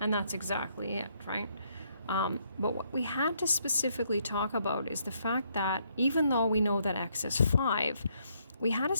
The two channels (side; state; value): both; inverted; correlation -0.72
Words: that's exactly it, right? But what we had to specifically talk about is the fact that even though we know that x is 5, we had to